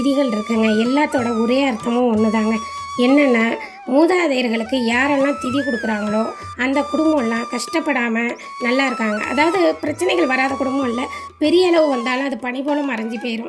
இருக்குங்க. எல்லாத்தோட ஒரே அர்த்தமும் ஒன்று தாங்க. என்னென்னா, மூதாதையர்களுக்கு யாரெல்லாம் திதி கொடுக்குறாங்களோ அந்த குடும்பம்லாம் கஷ்டப்படாமல் நல்லா இருக்காங்க. அதாவது பிரச்சனைகள் வராத குடும்பம் இல்லை, பெரிய அளவு வந்தாலும் அது பனி போல் மறைஞ்சி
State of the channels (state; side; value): identical; both; correlation 1.00